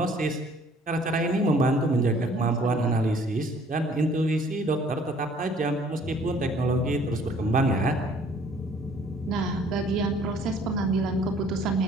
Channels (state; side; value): normal; both; correlation 0.57